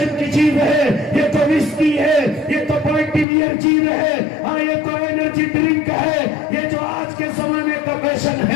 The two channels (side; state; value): right; drops out; at 3.2 s